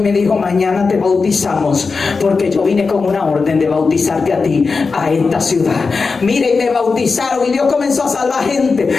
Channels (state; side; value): quieter; right; 4.5 dB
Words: dijo, mañana te bautizamos porque yo vine con una orden de bautizarte a ti, a esta ciudad. Mire, y me bautizaron y Dios comenzó a salvar gente.